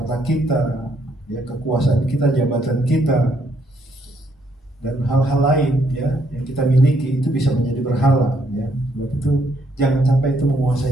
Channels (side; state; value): both; normal; correlation 0.71